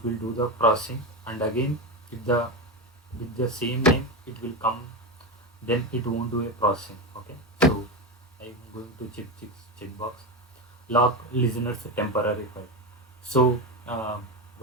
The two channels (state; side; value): normal; both; correlation 0.16